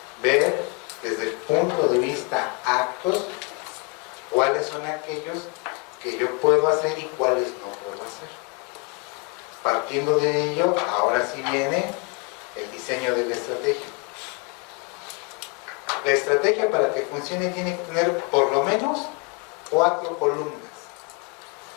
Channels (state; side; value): quieter; right; 31.1 dB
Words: ver desde el punto de vista actos cuáles son aquellos que yo puedo hacer y cuáles no puedo hacer. Partiendo de ello, ahora sí viene el diseño de la estrategia. La estrategia, para que funcione, tiene que tener por lo menos 4 columnas.